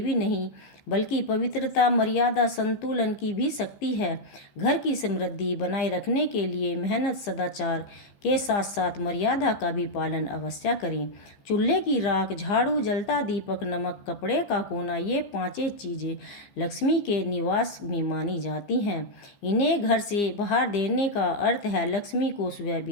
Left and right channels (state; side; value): late; right; 15 ms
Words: नहीं बल्कि पवित्रता, मर्यादा, संतुलन की भी शक्ति है। घर की समृद्धि बनाए रखने के लिए मेहनत, सदाचार के साथ साथ मर्यादा का भी पालन अवश्य करें। चूल्हे की राख, झाड़ू, जलता दीपक, नमक, कपड़े का कोना, ये पांचें चीज़ें लक्ष्मी के निवास में मानी जाती हैं। इन्हें घर से बाहर देने का अर्थ है लक्ष्मी को स्वयं